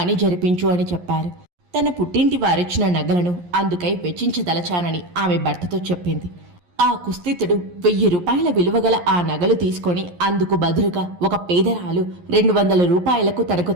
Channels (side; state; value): left; late; 11 ms